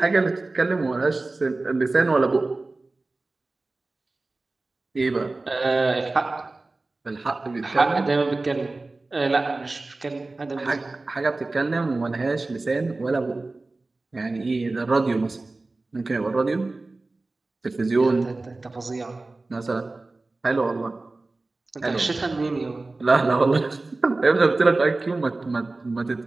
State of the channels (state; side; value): quieter; left; 3.2 dB